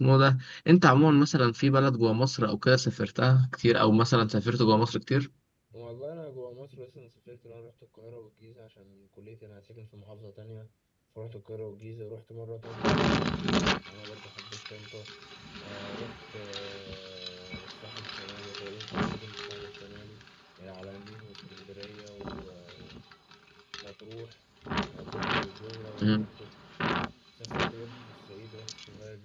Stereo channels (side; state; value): both; identical; correlation 1.00